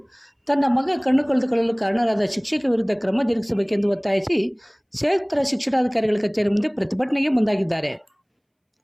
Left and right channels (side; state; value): both; identical; correlation 1.00